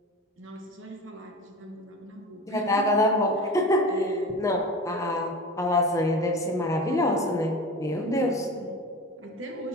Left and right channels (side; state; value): both; normal; correlation 0.32